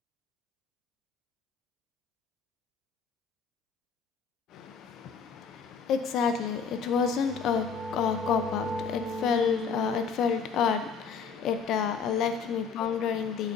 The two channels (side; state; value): right; quieter; 5.8 dB